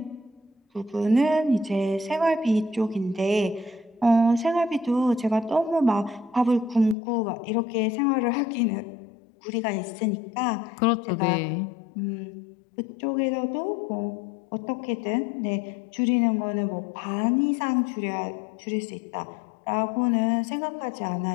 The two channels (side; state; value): right; drops out; at 7.0 s